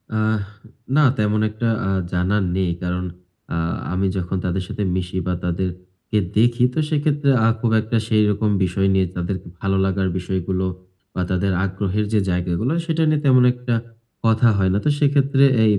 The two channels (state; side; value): identical; both; correlation 1.00